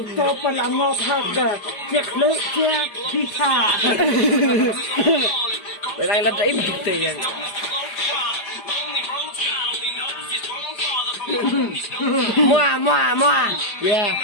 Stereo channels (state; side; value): late; right; 4.9 ms